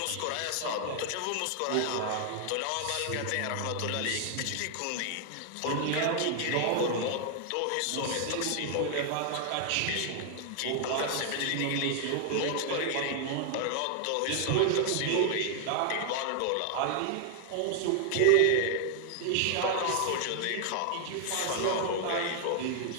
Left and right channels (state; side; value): different; both; correlation 0.00